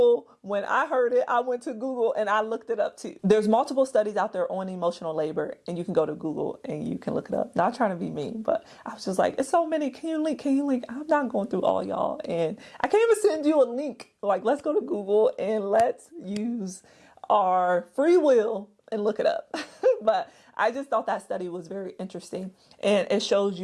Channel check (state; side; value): identical; both; correlation 1.00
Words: When I heard it, I went to Google and I looked it up too. There's multiple studies out there on emotional labor, and you can go to Google and you can look it up. Not trying to be mean, but I was just like, it's so many. Can you link? Can you link? I'm not going through all y'all. And I can't even send you a link. Like, let's go to Google and let's use our free will and look it up. But I just thought that study was very interesting, and it shows